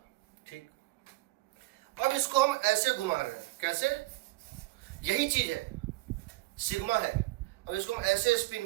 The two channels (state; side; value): quieter; left; 20.9 dB